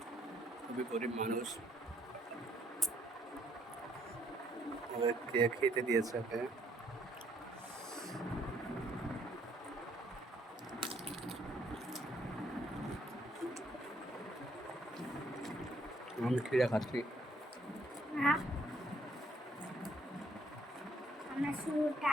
খুবই গরিব মানুষ। ওকে খেতে দিয়েছে ওকে। আমি খিরা খাচ্ছি। আমরা শুধু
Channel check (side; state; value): both; normal; correlation 0.68